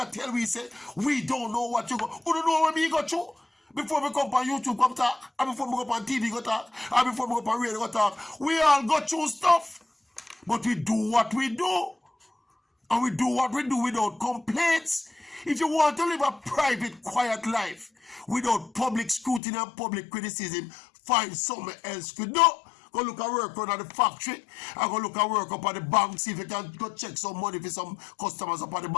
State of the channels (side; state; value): right; drops out; at 19.4 s